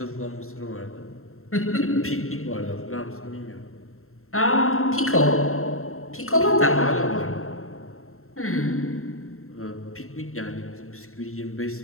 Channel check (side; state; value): right; late; 0.62 ms